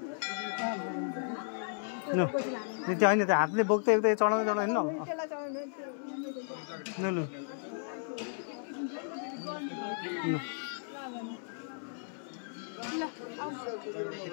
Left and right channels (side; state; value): right; silent; 55 dB below the other